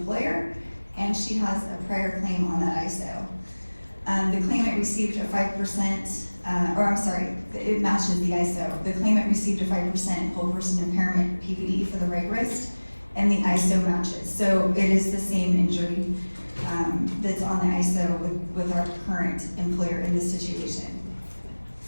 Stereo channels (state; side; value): inverted; both; correlation -1.00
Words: and she has a prior claim on that ISO. The claimant received a 5%, it matches the ISO. The claimant received a 5% whole person impairment PPD for the right wrist and the ISO matches. So it is the same injury that's on the ISO with our current employer in this situation.